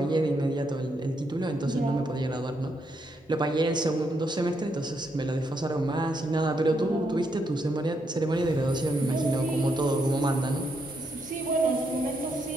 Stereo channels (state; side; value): normal; both; correlation 0.78